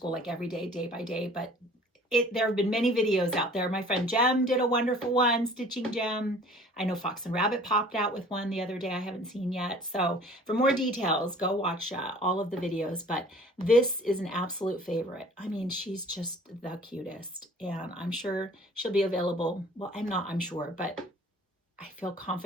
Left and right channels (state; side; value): normal; both; correlation 0.50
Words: like every day, day by day, but there have been many videos out there. My friend Jem did a wonderful one, Stitching Jem. I know Fox and Rabbit popped out with one the other day I haven't seen yet. So for more details, go watch all of the videos. But this is an absolute favorite. I mean, she's just the cutest. And I'm sure she'll be available. Well, I'm sure, but I feel